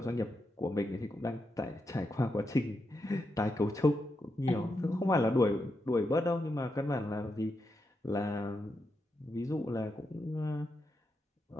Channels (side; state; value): both; normal; correlation 0.85